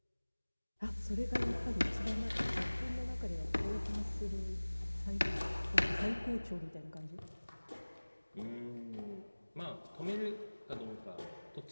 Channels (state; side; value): inverted; both; correlation -1.00